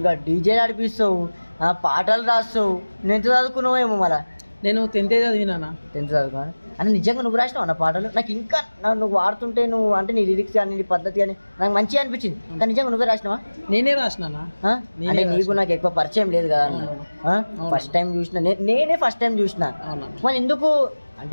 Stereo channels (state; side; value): inverted; both; correlation -1.00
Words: డీజే నడిపిస్తావు, పాటలు రాస్తావు. నువ్వు ఎంత చదువుకున్నావేమో మళ్ళా? నేను 10th చదివినా. 10th చదువుకున్నా అంటే నిజంగా నువ్వు రాసినావు అన్న పాటలు. నాకు ఇంకా నువ్వు వాడుతుంటే నువ్వు అంటే నీ లిరిక్స్ కానీ నీ పద్ధతి కానీ నాకు మంచిగా అనిపించింది. కానీ నిజంగా నువ్వే రాసినావా? నేనే రాసినా. అంటే నీకు నాకు ఎక్కువ పరిచయం లేదు కదా అన్న, ఫస్ట్ టైం చూసిన నేనే ఫస్ట్ టైం చూసిన. మరి ఎందుకు